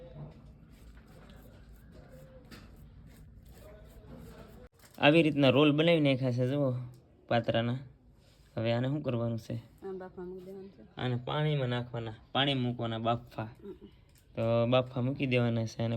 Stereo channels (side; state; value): both; identical; correlation 1.00